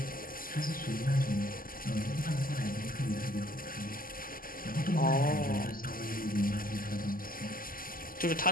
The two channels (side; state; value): right; late; 0.41 ms